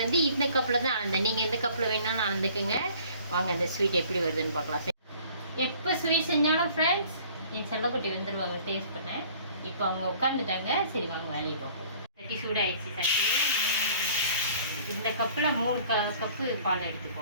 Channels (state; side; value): inverted; both; correlation -0.52